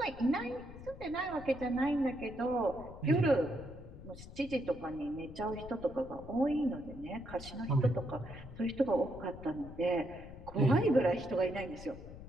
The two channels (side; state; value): left; noise; rumble, 14 dB below the sound